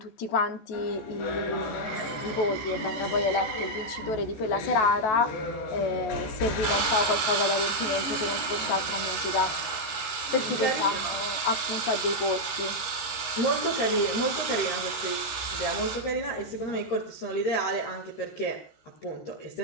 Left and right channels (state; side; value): late; right; 13 ms